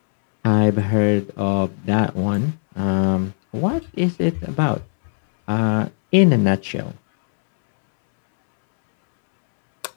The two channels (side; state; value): right; silent; 66 dB below the other